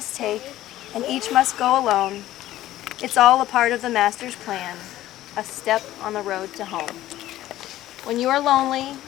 take, and each must go alone. It's all a part of the Master's plan, a step on the road to home. When you are lonely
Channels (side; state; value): right; quieter; 14.4 dB